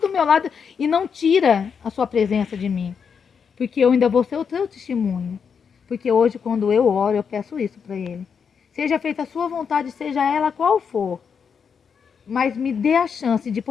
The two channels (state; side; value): quieter; right; 6.5 dB